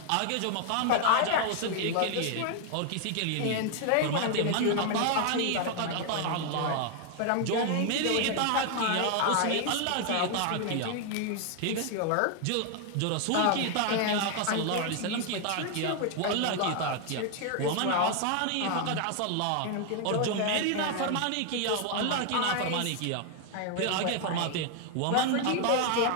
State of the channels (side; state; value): both; different; correlation 0.00